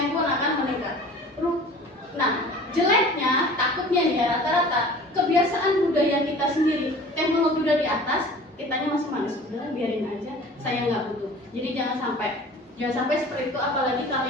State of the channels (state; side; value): normal; both; correlation 0.44